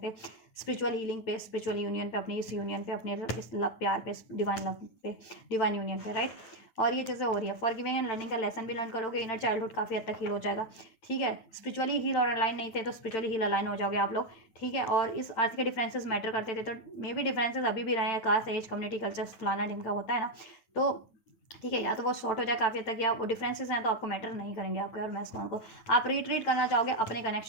स्पिरिचुअल हीलिंग पे, स्पिरिचुअल यूनियन पे, अपनी इस यूनियन पे, अपने इस लव प्यार पे, डिवाइन लव पे, डिवाइन यूनियन पे, राइट। और ये चीज़ें हो रही है। फॉरगिविंग एंड लर्निंग का लेसन भी लर्न करोगे, इनर चाइल्डहुड काफ़ी हद तक हील हो जाएगा, ठीक है। स्पिरिचुअली हील और अलाइन नहीं थे, तो स्पिरिचुअली हील अलाइन हो जाओगे आप लोग, ठीक है। और इस अर्थ के डिफरेंसेस मैटर करते थे, तो मे भी डिफरेंसेस अभी भी रहे हैं, कास्ट, एज, कम्युनिटी, कल्चर, फलाना ढिमका होता है ना, तो ठीक है, या तो वो शॉर्ट हो जाए काफ़ी हद तक, या वो डिफरेंसेस हैं तो आपको मैटर नहीं करेंगे आपके और मैस्कुलिन को। आप रिट्रीट करना चाहोगे अपने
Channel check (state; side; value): late; right; 9.2 ms